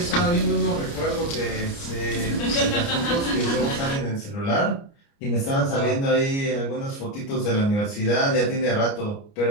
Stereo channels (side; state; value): right; late; 29 ms